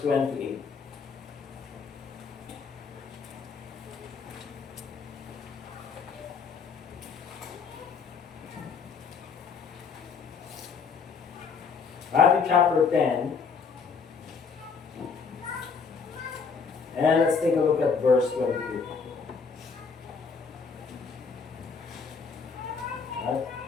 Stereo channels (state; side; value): quieter; right; 5.5 dB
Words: 28. Matthew chapter 10, and let's take a look at verse 28. Right?